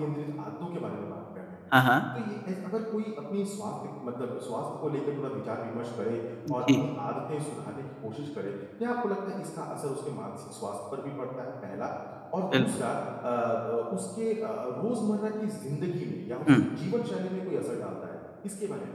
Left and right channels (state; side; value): identical; both; correlation 1.00